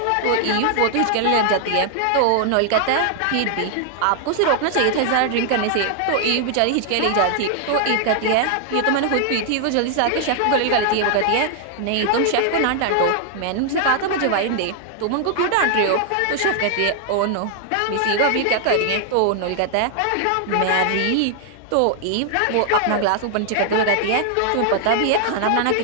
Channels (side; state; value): both; different; correlation 0.00